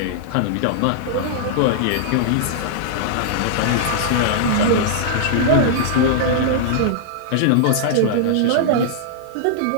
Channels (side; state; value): both; different; correlation -0.01